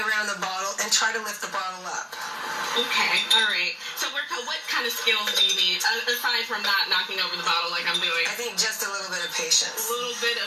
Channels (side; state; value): both; identical; correlation 1.00